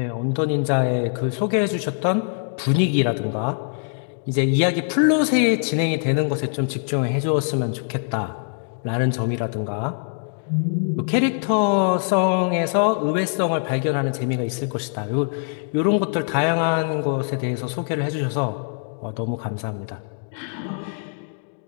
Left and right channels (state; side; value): silent; right; 63 dB below the other